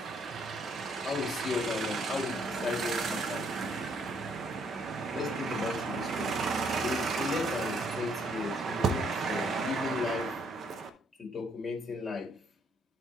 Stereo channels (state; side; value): normal; both; correlation 0.68